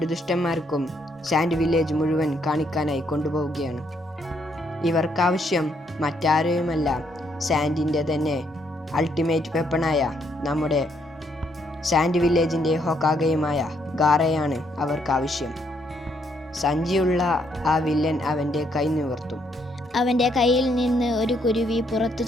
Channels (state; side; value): normal; both; correlation 0.73